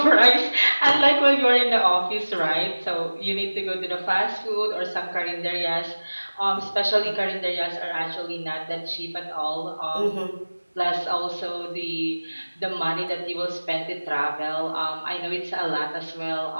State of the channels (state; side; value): inverted; both; correlation -1.00